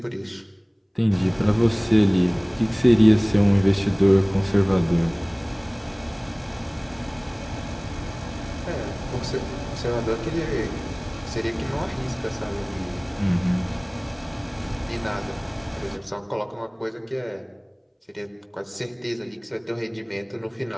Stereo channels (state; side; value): identical; both; correlation 1.00